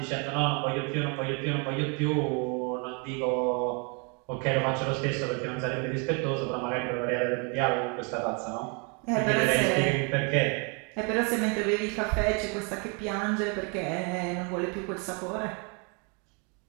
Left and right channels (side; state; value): left; quieter; 34.6 dB